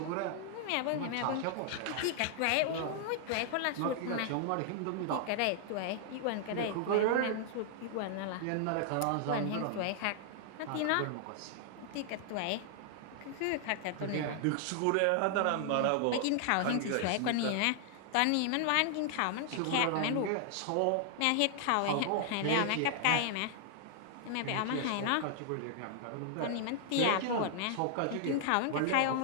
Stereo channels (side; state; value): both; different; correlation 0.00